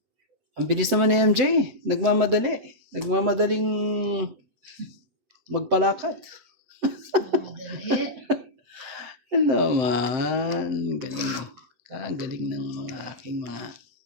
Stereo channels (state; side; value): late; left; 7.8 ms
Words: Ang bilis naman ni MJ. Nagmamadali. Nagmamadaling magpalakad. Madali. Ano man. Galing. Kagaling ng mga aking mga